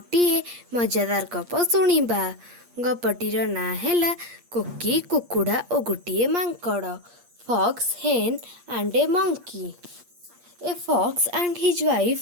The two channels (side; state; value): left; late; 8.5 ms